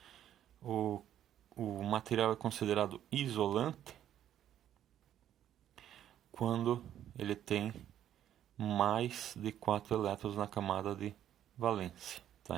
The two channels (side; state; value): left; quieter; 11.0 dB